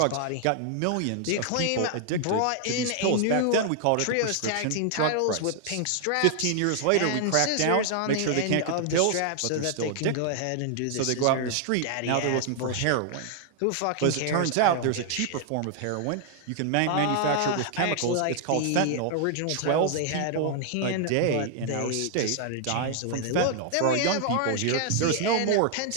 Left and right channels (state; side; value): different; both; correlation 0.00